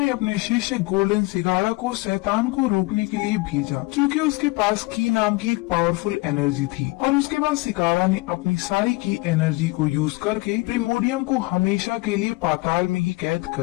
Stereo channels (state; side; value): quieter; right; 23.0 dB